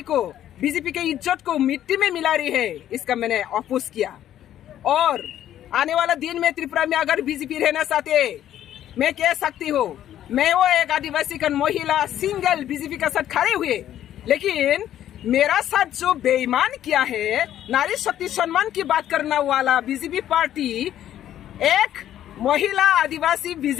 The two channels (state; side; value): quieter; right; 11.5 dB